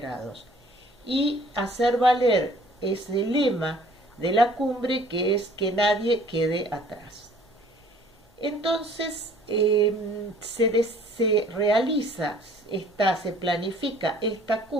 y hacer valer ese lema de la cumbre, que es que nadie quede atrás. Entonces se planifica esta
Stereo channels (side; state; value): both; normal; correlation 0.55